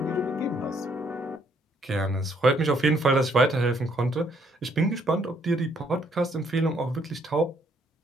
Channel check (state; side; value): normal; both; correlation 0.69